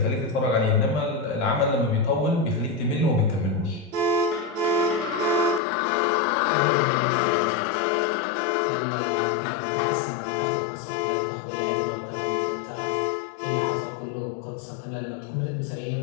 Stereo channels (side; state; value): right; drops out; at 5.6 s